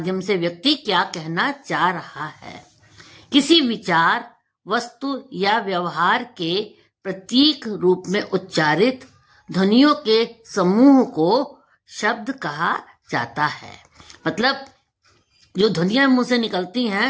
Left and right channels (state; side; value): identical; both; correlation 1.00